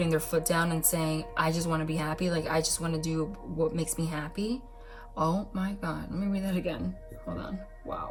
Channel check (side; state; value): both; identical; correlation 1.00